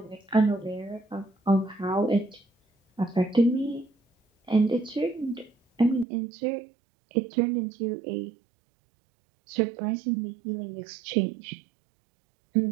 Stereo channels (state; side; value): drops out; left; at 6.1 s